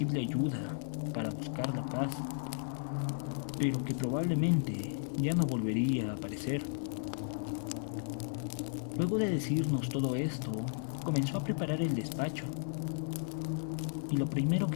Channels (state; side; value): silent; right; 55 dB below the other